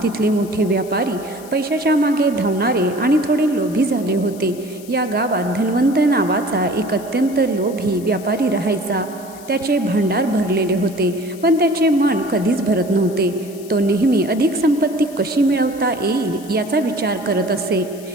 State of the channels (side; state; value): left; noise; hiss, 20 dB below the sound